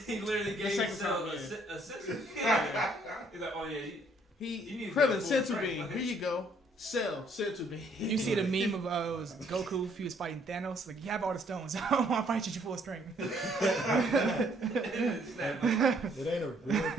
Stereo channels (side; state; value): both; normal; correlation 0.65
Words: He literally gave Cell a sense. He's like, oh yeah. He Krillin senzu bean. Here you go. Cell senzu bean. You see the meme of it was Goku if he was fighting Thanos. Like, you have all the stones. I don't want to fight you at full strength. It ain't a real.